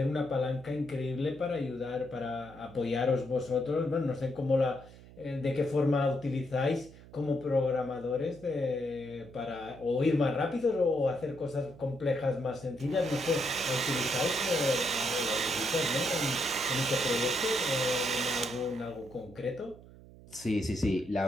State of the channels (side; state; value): right; noise; hum, 20 dB below the sound